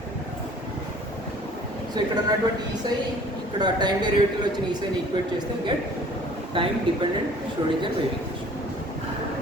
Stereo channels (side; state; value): both; normal; correlation 0.51